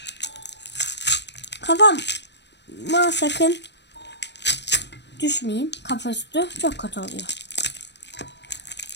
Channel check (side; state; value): right; late; 0.50 ms